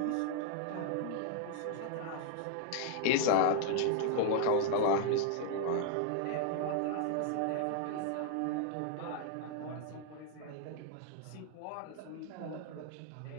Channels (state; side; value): different; both; correlation 0.00